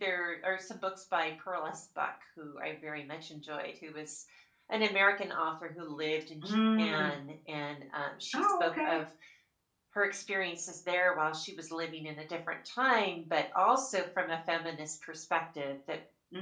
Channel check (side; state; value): both; identical; correlation 1.00